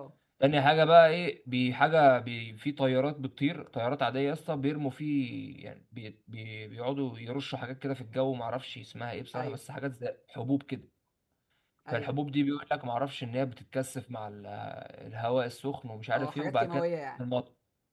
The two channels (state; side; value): identical; both; correlation 1.00